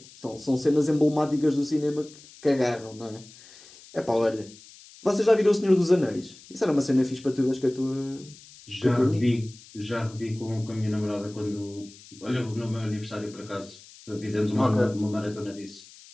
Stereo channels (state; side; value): noise; left; hiss, 21 dB below the sound